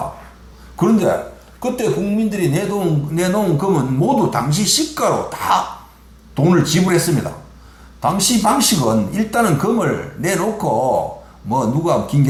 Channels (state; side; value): identical; both; correlation 1.00